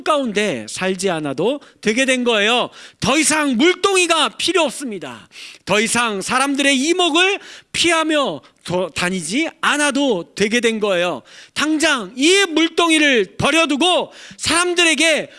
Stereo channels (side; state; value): both; identical; correlation 1.00